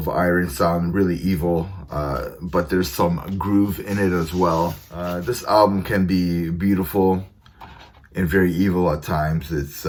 Iron sound really evil, but there's some groove in it as well. This album can be beautiful and very evil at times. It's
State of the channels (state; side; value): identical; both; correlation 1.00